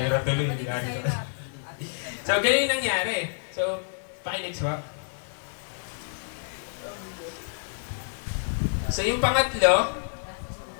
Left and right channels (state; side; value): silent; right; digital silence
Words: tuloy, hindi So, ganyan yung nangyari. So, pakinext ba? So, yung pangatlo,